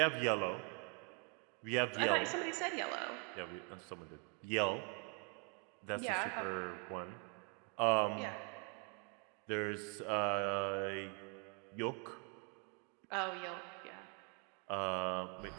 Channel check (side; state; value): left; quieter; 37.2 dB